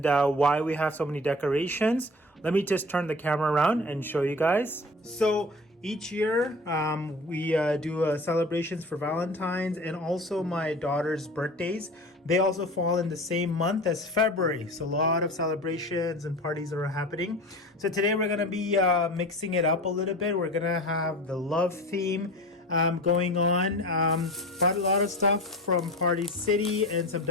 why we have so many decorations. Let me just turn the camera around and show you guys. So each year we do celebrations for Valentine's and also my daughter's birthdays. They also fall in the same month as February. So a lot of celebrations and parties are happening. So today we're gonna be mixing it up a little bit. We're gonna have the love theme going on. Bought a lot of stuff from Party City and some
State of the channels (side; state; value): both; normal; correlation 0.36